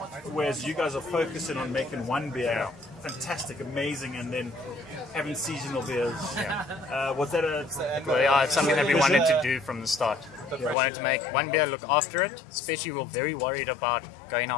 whereas you guys are focusing on making one beer fantastic, amazing, and then having seasonal beers. Was that it's something that we wanted to do from the start. We wanted to make one beer, look after it, especially we were very worried about going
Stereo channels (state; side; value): drops out; right; at 10.8 s